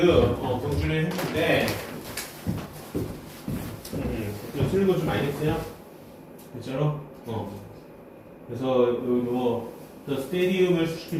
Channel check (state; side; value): identical; both; correlation 1.00